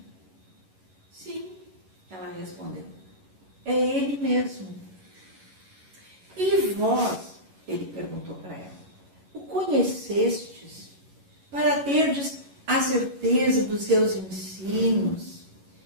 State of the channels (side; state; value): left; late; 11 ms